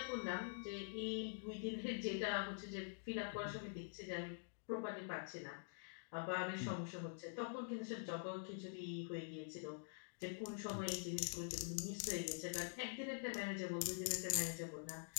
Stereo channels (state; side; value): silent; right; digital silence